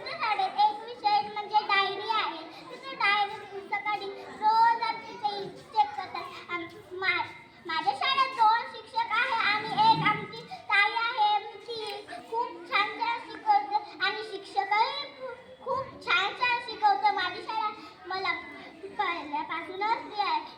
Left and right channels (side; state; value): both; identical; correlation 1.00